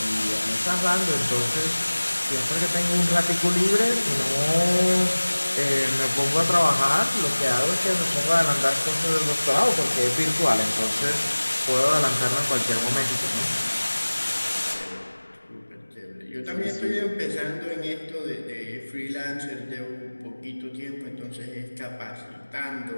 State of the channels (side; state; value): both; inverted; correlation -1.00